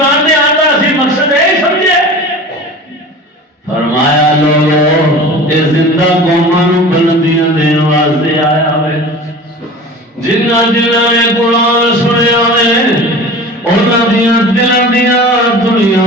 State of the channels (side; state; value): both; normal; correlation 0.37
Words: دے آندا اسی مقصد ہے سمجھے فرمایا لوگوں اے زندہ قوماں نو بلندیاں دین واسطے آیا ہوئے جنہ جنہ نے قرآن سنیا نے انہاں دیاں دلاں دیاں دنیا